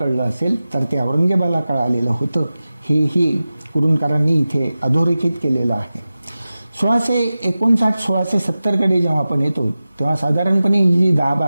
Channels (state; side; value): inverted; both; correlation -0.95